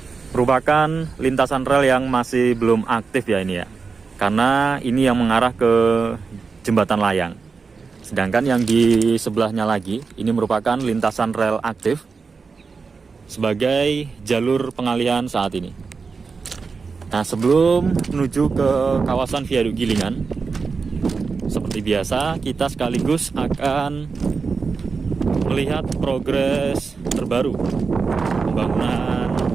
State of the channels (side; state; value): left; quieter; 4.9 dB